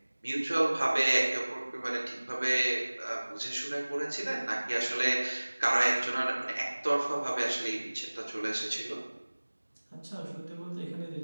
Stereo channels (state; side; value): inverted; both; correlation -1.00